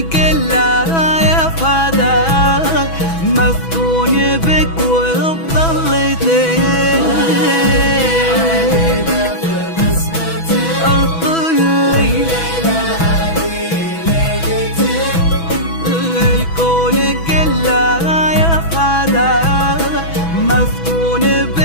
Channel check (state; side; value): late; right; 6.1 ms